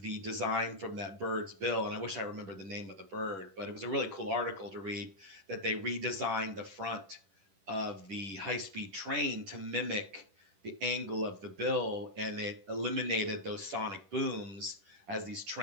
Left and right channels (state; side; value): late; left; 10 ms